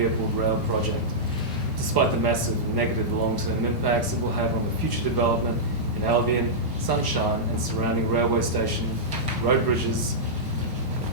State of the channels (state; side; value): normal; both; correlation -0.11